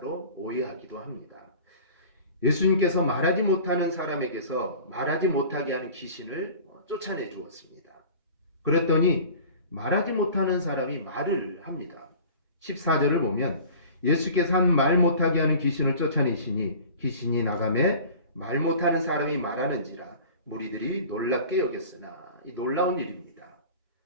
오해하기도 합니다. 예수님께서 말하지 못하는 사람에게서 말하지 못하게 하는 귀신을 쫓아내 주었습니다. 그랬더니 말하지 못하는 사람이 말을 합니다. 14절을 보면 예수께서 한 말 못하게 하는 귀신을 쫓아내시니 귀신이 나가매 말 못하는 사람이 말하는지라 무리들이 놀랍게 여겼으나 이 놀라운 일입니다.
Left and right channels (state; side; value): inverted; both; correlation -0.42